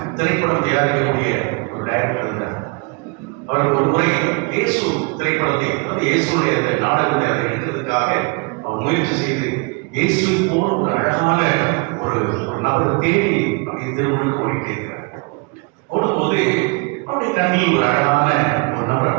திரைப்படம் தயாரிக்கக்கூடிய ஒரு டைரக்டர் இருந்தார். அவர் ஒரு முறை இயேசு திரைப்படத்தை, இயேசுடைய நாடகத்தை அதை எடுக்கிறதுக்காக அவர் முயற்சி செய்து இயேசுவை போல ஒரு அழகான ஒரு நபரை தேடி அப்படி திருமணம் ஓடிக்கிறார். ஓடும்போது அவருடைய கண்ணில் ஒரு அழகான ஒரு நபர்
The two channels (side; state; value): left; quieter; 30.8 dB